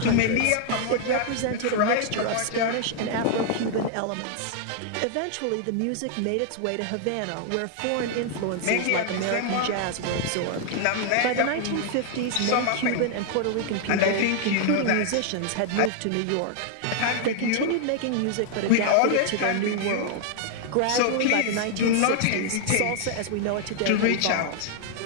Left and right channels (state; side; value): different; both; correlation 0.00